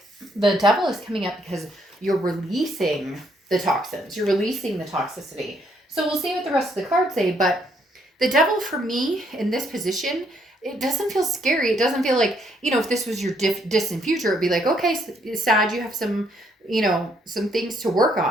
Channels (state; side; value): normal; both; correlation 0.70